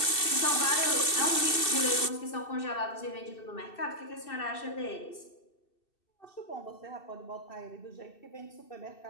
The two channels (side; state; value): right; late; 2.7 ms